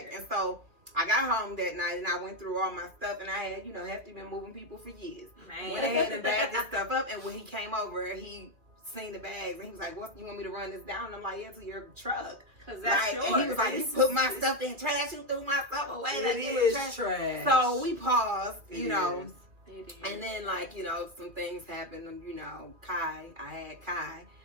And so I got home that night and I went through all my stuff and I had, Hefty been moving people for years. Went ahead and bagged this stuff up. And when he came over, he seen the bags and he was like, "What, you want me to run this down?" And I'm like, "Yeah, to your truck." And he was like, "You put my stuff in trash. You threw my stuff away. It is trash." So we paused, and then some things happened. I had Kai,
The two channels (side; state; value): left; late; 2.5 ms